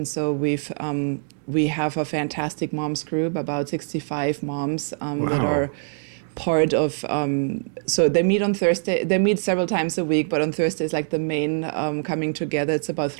so we have a fantastic moms group, about 65 moms that are part of, so they meet on Thursday, they meet several times a week, but on Thursday is like the main coming together. It's about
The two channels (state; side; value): silent; left; digital silence